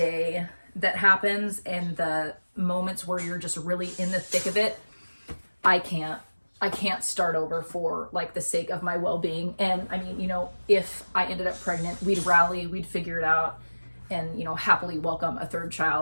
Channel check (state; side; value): inverted; both; correlation -1.00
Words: that happens and the moments where you're just really in the thick of it, I can't start over for like the sake of my well-being. And I mean, you know, if I ended up pregnant, we'd rally, we'd figure it out, and, you know, happily welcome a 3rd